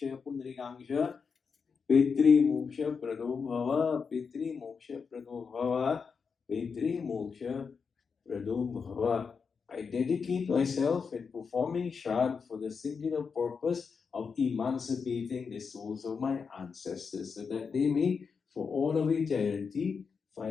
Pundrikangsha Pitri Moksha Prado Bhava. Pitri Moksha Prado Bhava. Pitri Moksha Prado Bhava. I dedicate myself in performing Shraddh for the singular purpose of emancipating the souls of my ancestors so that they may, for all of eternity,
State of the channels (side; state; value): right; quieter; 5.6 dB